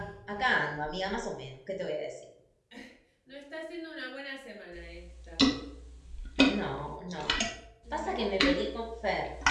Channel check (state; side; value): identical; both; correlation 1.00